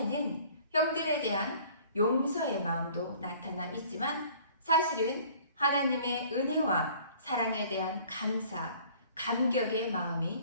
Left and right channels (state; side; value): inverted; both; correlation -0.52